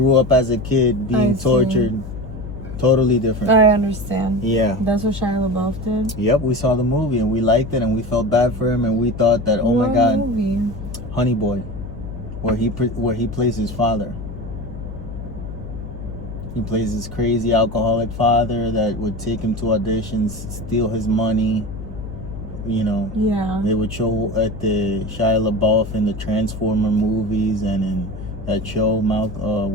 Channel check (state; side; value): noise; left; hum, 10 dB below the sound